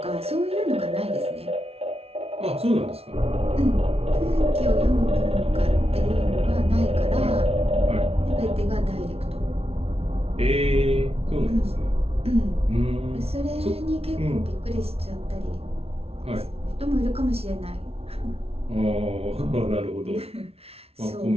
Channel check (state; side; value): late; left; 0.29 ms